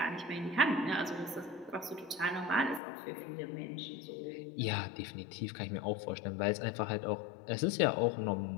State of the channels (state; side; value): drops out; right; at 2.8 s